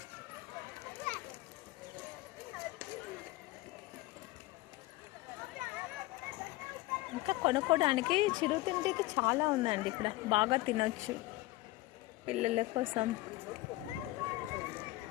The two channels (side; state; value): right; quieter; 19.0 dB